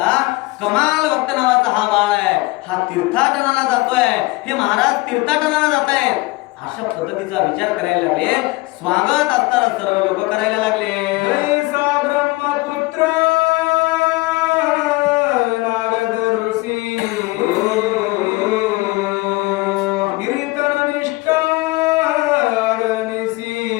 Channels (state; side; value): quieter; right; 22.6 dB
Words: कमाल भक्त नावाचा हा बाळ आहे हा तीर्थाटनाला जातोय हे महाराज तीर्थाटनाला जात आहेत अशा पद्धतीचा विचार करायला लागले. स्वागत असताना सर्व लोक करायला लागले. जैसा ब्रह्मपुत्र